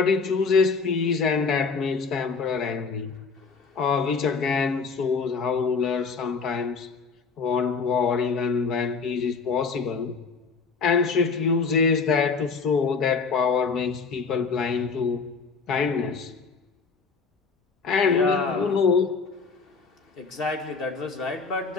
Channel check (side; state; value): right; quieter; 5.0 dB